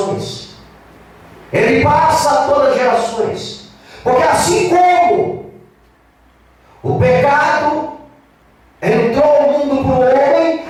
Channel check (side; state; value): both; identical; correlation 1.00